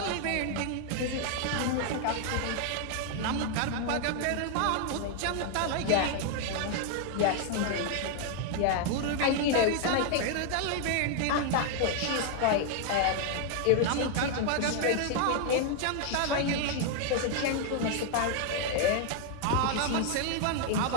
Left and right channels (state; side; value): different; both; correlation 0.00